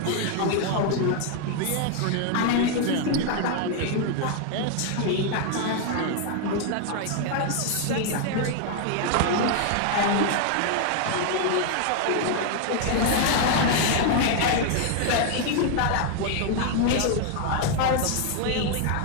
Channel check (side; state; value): both; different; correlation 0.00